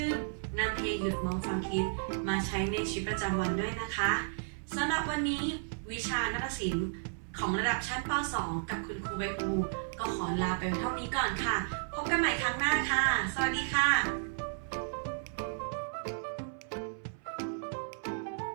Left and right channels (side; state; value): left; silent; 56 dB below the other